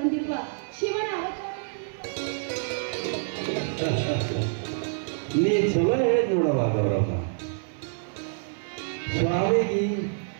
ಶಿವನ ಅವತಾರ. ನೀ ಚಲೋ ಹೇಳಿದ್ ನೋಡವ ಗೌರಮ್ಮ. ಸ್ವಾಮಿಗೆ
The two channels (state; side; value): silent; left; 60 dB below the other